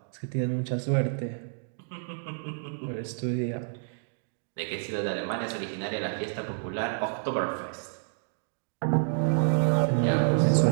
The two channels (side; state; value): left; silent; digital silence